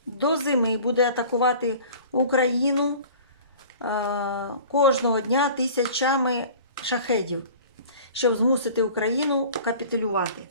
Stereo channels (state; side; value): inverted; both; correlation -0.44